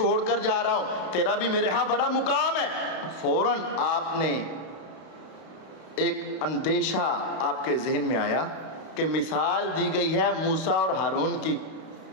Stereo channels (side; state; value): right; late; 32 ms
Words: کر جا رہا ہوں, تیرا بھی میرے ہاں بڑا مقام ہے. فوراً آپ نے ایک اندیشہ آپ کے ذہن میں آیا کہ مثال دی گئی ہے موسیٰ اور ہارون کی,